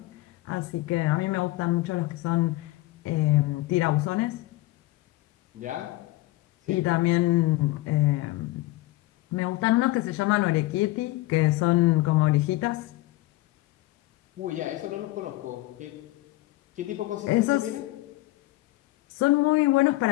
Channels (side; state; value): right; quieter; 18.6 dB